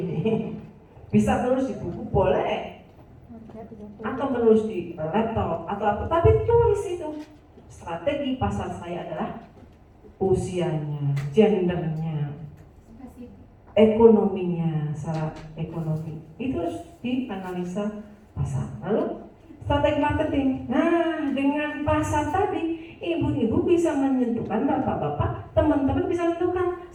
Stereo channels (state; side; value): identical; both; correlation 1.00